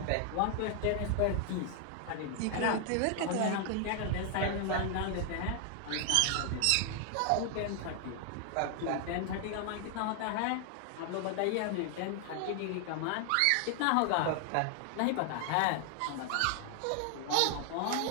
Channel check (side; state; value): both; different; correlation 0.00